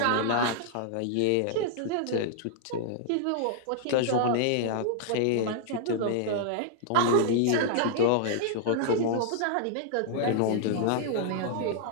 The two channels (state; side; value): different; both; correlation -0.01